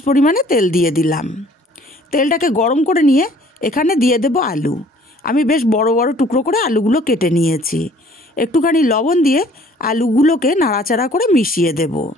পরিমাণে তেল দিয়ে দিলাম। তেলটাকে গরম করে নিয়ে এখানে দিয়ে দেব আলু। আমি বেশ বড় বড় টুকরো করে আলুগুলো কেটে নিয়েছি। একটুখানি লবণ দিয়ে আলুগুলোকে নাড়াচাড়া করে মিশিয়ে দেব।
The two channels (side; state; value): both; normal; correlation 0.55